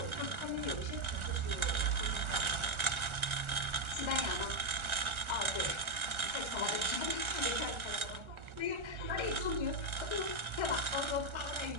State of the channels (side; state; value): left; late; 1.4 ms